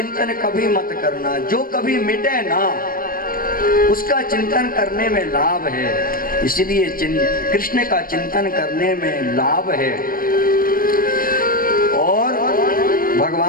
कभी मत करना। जो कभी मिटे ना, उसका चिंतन करने में लाभ है। इसलिए कृष्ण का चिंतन करने में लाभ है। और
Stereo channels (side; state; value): right; late; 0.41 ms